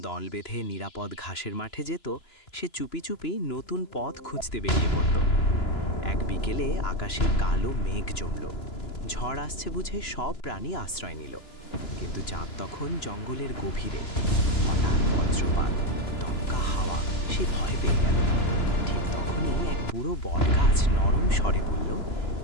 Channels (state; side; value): late; right; 2.9 ms